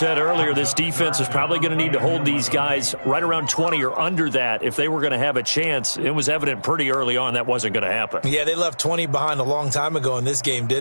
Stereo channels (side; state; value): both; inverted; correlation -1.00